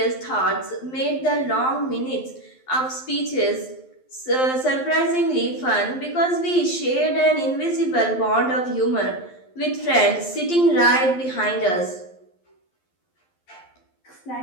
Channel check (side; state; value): right; late; 12 ms